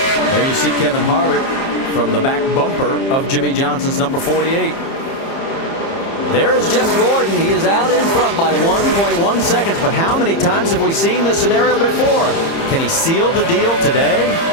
There you see Kevin Harvick from the back bumper of Jimmy Johnson's number 48. There is Jeff Gordon. He is out in front by 1.1 seconds. But how many times have we seen this scenario before? Can he seal the deal today?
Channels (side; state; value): right; late; 30 ms